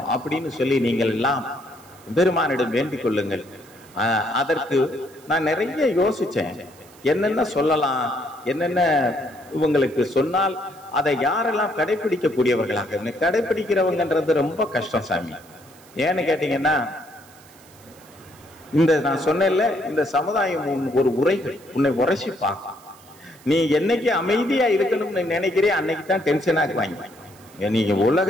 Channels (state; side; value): noise; right; hiss, 25 dB below the sound